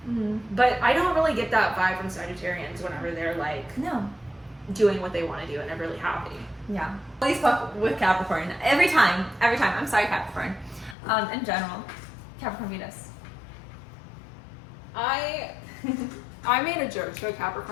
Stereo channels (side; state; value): right; drops out; at 11.0 s